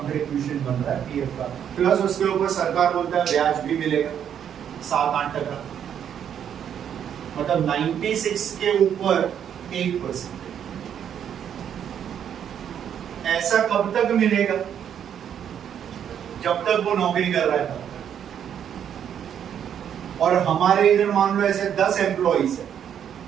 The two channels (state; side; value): quieter; left; 9.0 dB